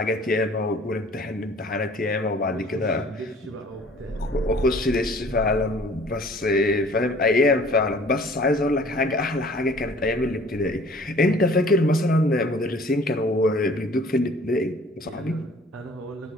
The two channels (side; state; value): both; normal; correlation 0.52